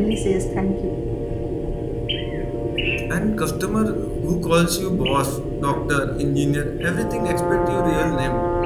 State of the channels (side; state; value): both; identical; correlation 1.00